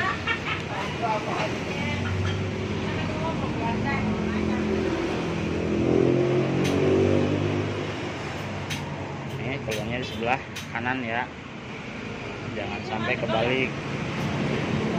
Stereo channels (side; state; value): both; identical; correlation 1.00